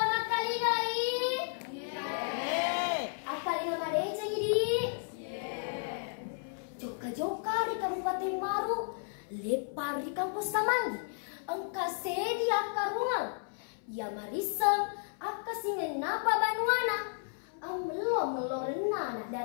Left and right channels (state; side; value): silent; right; 56 dB below the other